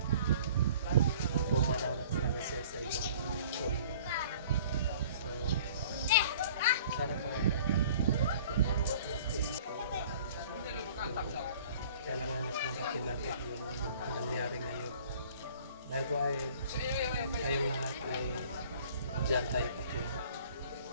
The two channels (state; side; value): inverted; both; correlation -0.50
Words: Pumanaw na talaga siya sa ibang mundo. So, sana po matanggap natin. Kailangan niya tanggapin natin yung nangyari ngayon. Dahil po ay kayong lahat ay dyan tayo patungo.